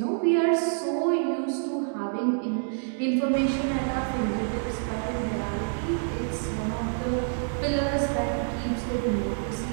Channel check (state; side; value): silent; left; digital silence